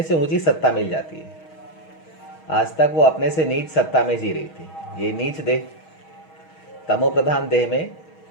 से ऊंची सत्ता मिल जाती है। आज तक वो अपने से नीच सत्ता में जी रही थी। ये नीच देह, तमो प्रधान देह में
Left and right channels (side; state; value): right; late; 6.3 ms